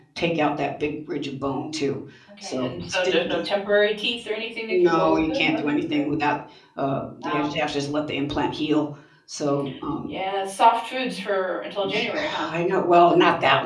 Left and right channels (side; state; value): both; identical; correlation 1.00